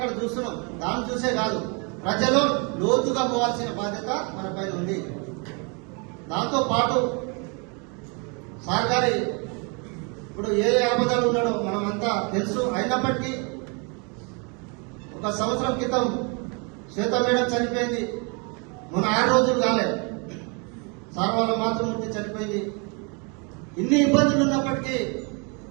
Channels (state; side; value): quieter; left; 33.6 dB